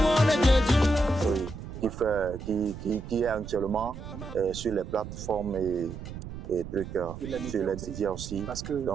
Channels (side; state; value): right; noise; rumble, 10 dB below the sound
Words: Oui, qui est actuellement sur les plateformes et trucs, sur les médias aussi.